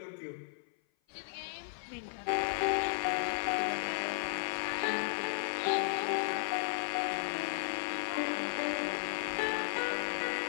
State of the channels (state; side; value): silent; right; 55 dB below the other